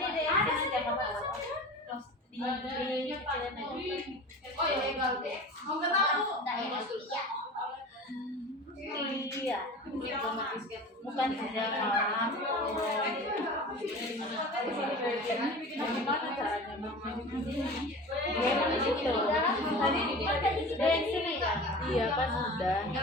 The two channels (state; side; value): normal; both; correlation 0.36